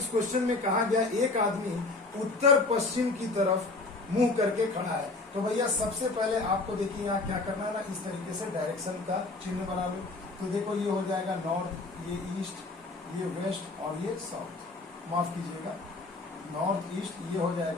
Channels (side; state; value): right; quieter; 3.4 dB